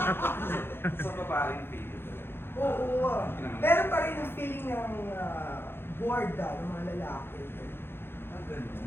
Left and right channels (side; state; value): right; late; 0.10 ms